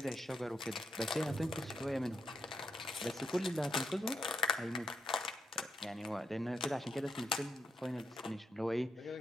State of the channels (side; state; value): both; normal; correlation 0.81